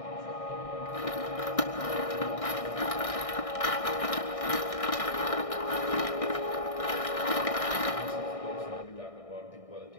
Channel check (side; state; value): right; late; 1.6 ms